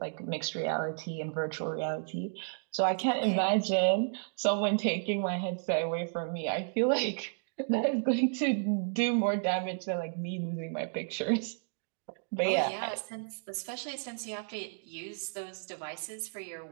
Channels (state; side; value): silent; left; digital silence